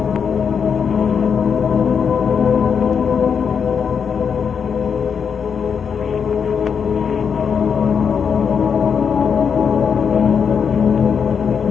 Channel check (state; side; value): quieter; right; 6.7 dB